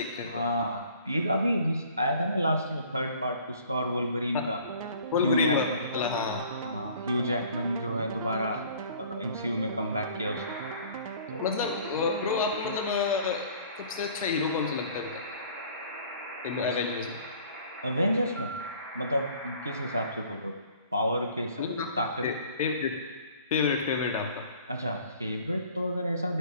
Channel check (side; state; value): both; inverted; correlation -0.53